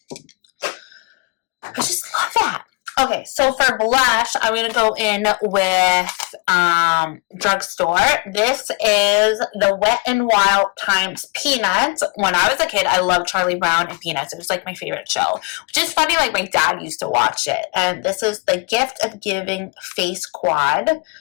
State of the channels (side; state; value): right; quieter; 30.8 dB